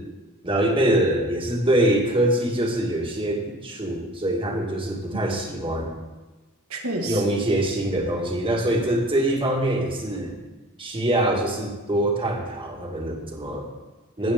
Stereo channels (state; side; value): normal; both; correlation 0.45